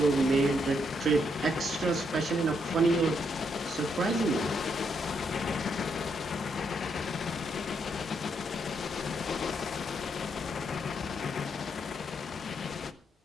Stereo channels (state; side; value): normal; both; correlation 0.76